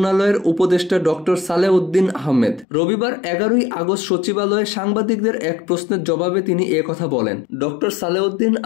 উপদেষ্টা ডক্টর সালেউদ্দিন আহমেদ। রবিবার 11ই আগস্ট সচিবালয়ে সাংবাদিকদের এক প্রশ্নের জবাবে তিনি কথা বলেন। ডক্টর সালেউদ্দিন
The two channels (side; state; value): right; drops out; at 2.7 s